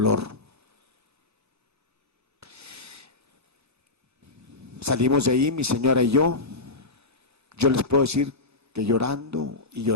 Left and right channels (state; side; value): quieter; right; 3.3 dB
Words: Salimos de ahí, mi señora y yo les puedo decir que llorando y